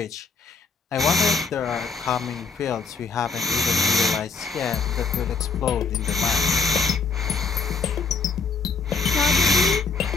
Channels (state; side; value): quieter; right; 4.8 dB